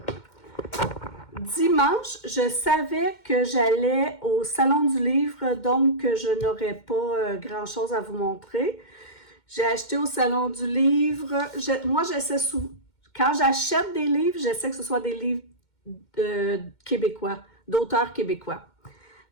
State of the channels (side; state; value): right; late; 2.1 ms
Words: Dimanche, je savais que j'allais au Salon du Livre, donc je n'aurais pas grand-chose à vous montrer. J'ai acheté au Salon du Livre. Moi, j'essaie quand j'achète des livres, j'essaie que ce soit des livres québécois, d'auteurs québécois.